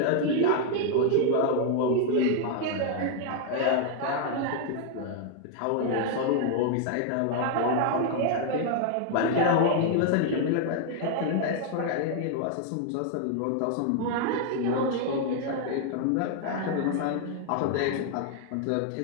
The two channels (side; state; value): both; different; correlation 0.00